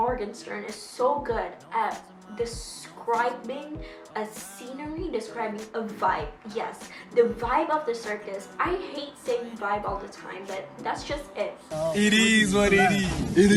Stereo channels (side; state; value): both; identical; correlation 1.00